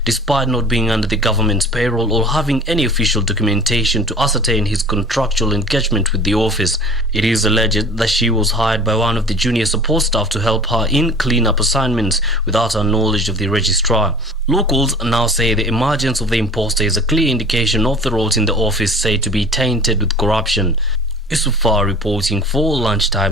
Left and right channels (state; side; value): normal; both; correlation 0.43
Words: despite not being under the government's payroll or having any official documentation to ascertain his contractual engagement with the office. It is alleged that she was hired by one of the junior support staff to help her in clean-up assignments without her knowledge of the registrar. Locals now say the emergence of the imposter is a clear indication of the roles in the office said to be tainted with corruption. Isufar reporting for